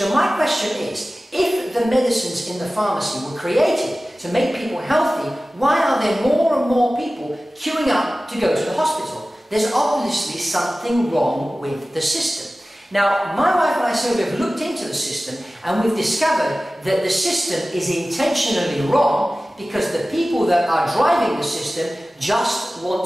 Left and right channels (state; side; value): normal; both; correlation 0.96